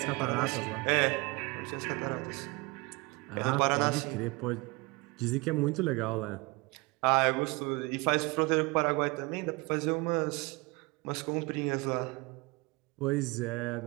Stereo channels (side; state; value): left; quieter; 25.4 dB